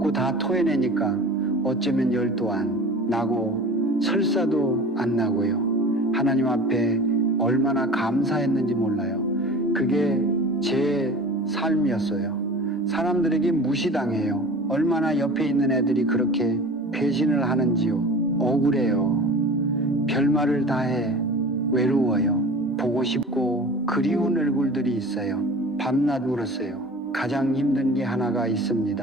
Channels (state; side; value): normal; both; correlation 0.38